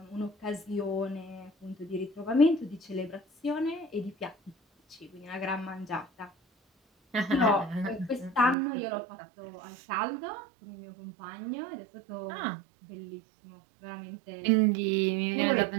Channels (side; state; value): left; drops out; at 8.6 s